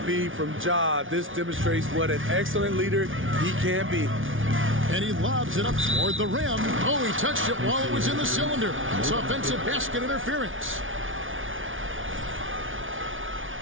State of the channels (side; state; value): left; late; 0.57 ms